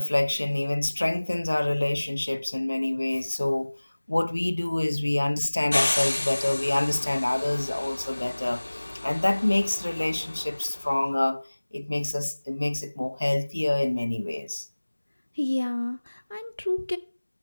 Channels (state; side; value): inverted; both; correlation -1.00